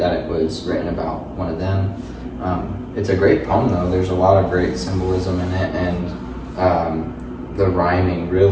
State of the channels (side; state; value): both; identical; correlation 1.00